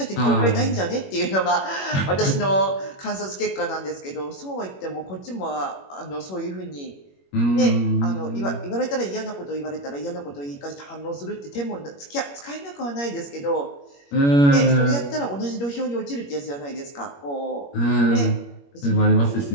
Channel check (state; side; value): late; right; 21 ms